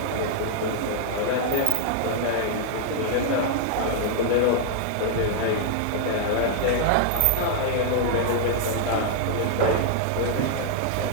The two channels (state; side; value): different; both; correlation -0.01